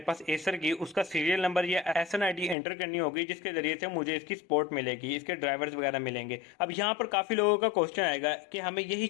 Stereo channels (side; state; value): right; drops out; at 2.6 s